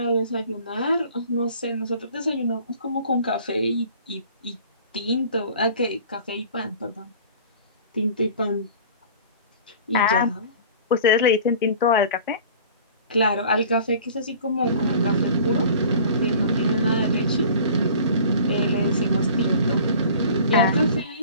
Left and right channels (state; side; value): inverted; both; correlation -0.45